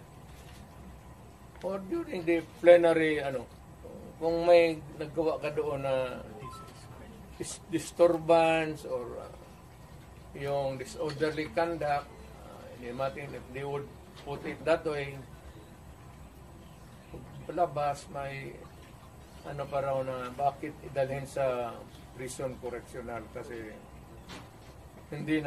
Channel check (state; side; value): identical; both; correlation 1.00